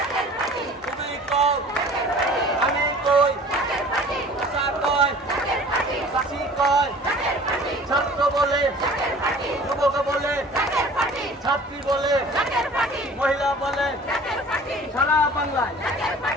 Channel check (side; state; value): both; normal; correlation 0.46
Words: তুমি কও আমি কই চাচা কয় চাচি কয় ছাত্র বলে যুবক বলে ছাত্রী বলে মহিলা বলে সারা বাংলায়